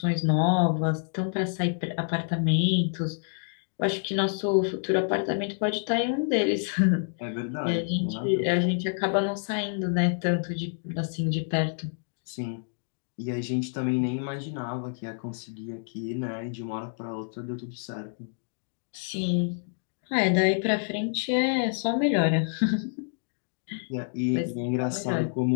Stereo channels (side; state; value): right; silent; digital silence